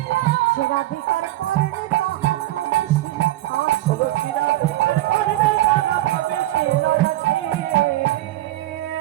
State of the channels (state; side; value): quieter; left; 15.9 dB